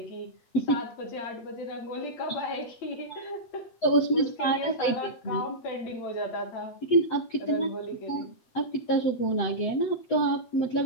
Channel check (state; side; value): late; right; 8.2 ms